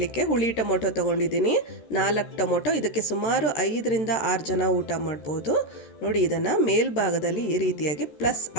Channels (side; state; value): right; late; 14 ms